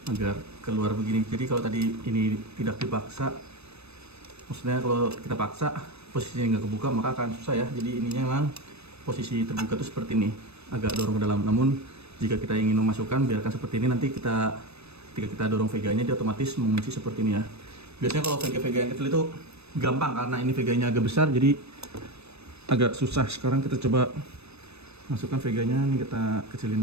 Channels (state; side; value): late; left; 0.79 ms